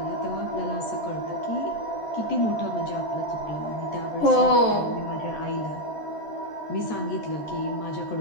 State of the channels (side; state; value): right; late; 14 ms